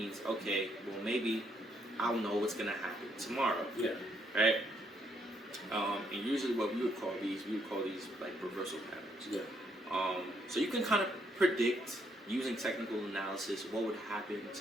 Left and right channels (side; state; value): both; normal; correlation 0.73